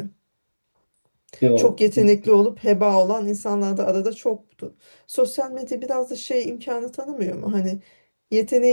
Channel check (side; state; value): both; inverted; correlation -1.00